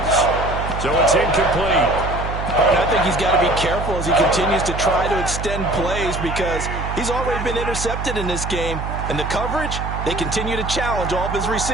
So it's incomplete. And I think he's got to be careful as he continues to try to extend plays, because he's already been intercepted in this game. And the coverage, they continue to challenge all of his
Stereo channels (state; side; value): noise; right; hum, 5 dB below the sound